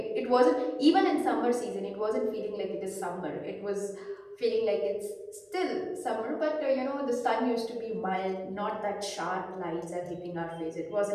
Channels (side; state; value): both; identical; correlation 1.00